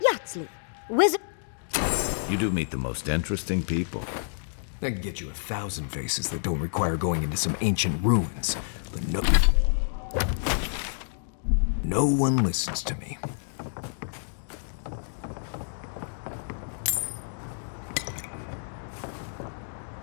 wizard... You do meet the most interesting people. I can get you 1,000 faces that don't require going into some ancient ruins. But no one listens to me.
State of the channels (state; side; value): silent; right; digital silence